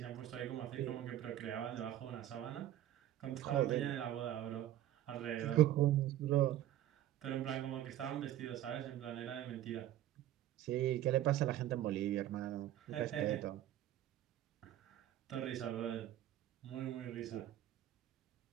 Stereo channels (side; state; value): left; quieter; 12.8 dB